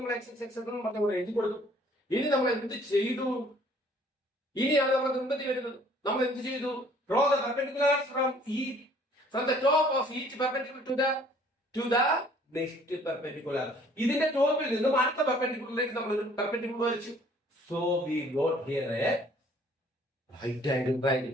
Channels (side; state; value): both; normal; correlation 0.57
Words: എക്സ് പറഞ്ഞ എഴുതി കൊടുക്കും. ഇനി നമ്മൾ എന്ത് ചെയ്തു? ഇനിയാണ് നമ്മൾ മുമ്പത്തി വരുന്നത്. നമ്മൾ എന്ത് ചെയ്തു? Draw the perpendiculars from the top of each perpendicular to the next perpendicular. ഇതിന്റെ ടോപ്പിൽ നിന്നും അടുത്ത പെർപെൻഡിക്കുലറിലേക്ക് നമ്മൾ ഒരു പെർപെൻഡിക്കുലർ വരച്ചു. So we got here a right angle triangle.